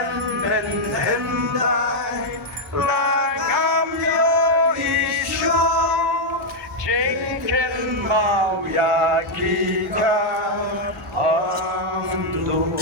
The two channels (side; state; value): both; normal; correlation -0.01